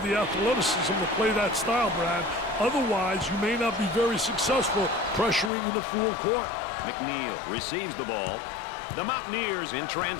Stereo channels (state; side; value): drops out; right; at 5.5 s